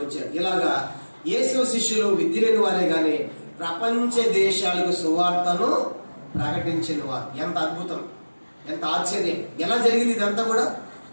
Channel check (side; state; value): both; inverted; correlation -1.00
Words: వచ్చాడు. ఇలాగా యేసు శిష్యులు విద్య లేని వారే గాని ప్రపంచ దేశాలకు సువార్తను ప్రకటించిన వారు. ఎంత అద్భుతం, ఎంత ఆశ్చర్యం! ఎలా జరిగింది ఇదంతా కూడా?